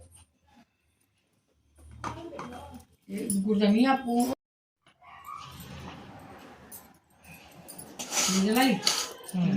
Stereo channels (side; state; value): both; identical; correlation 1.00